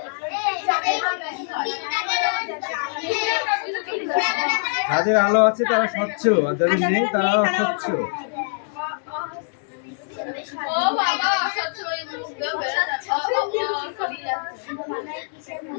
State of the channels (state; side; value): silent; right; 63 dB below the other